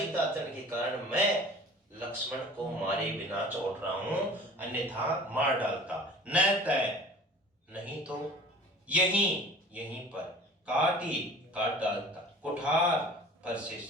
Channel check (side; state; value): both; normal; correlation 0.44